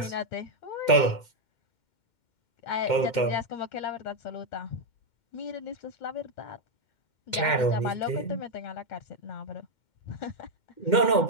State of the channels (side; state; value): right; late; 2.1 ms